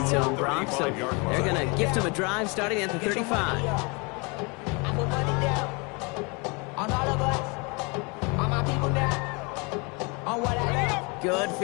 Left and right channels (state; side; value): quieter; right; 30.2 dB